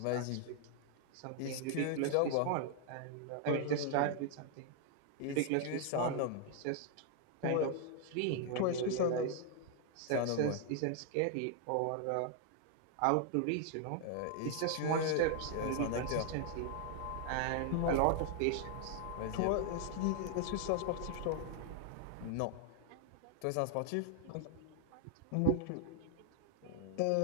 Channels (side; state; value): both; different; correlation 0.00